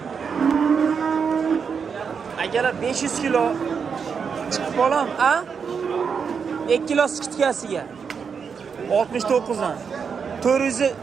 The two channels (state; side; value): quieter; left; 6.2 dB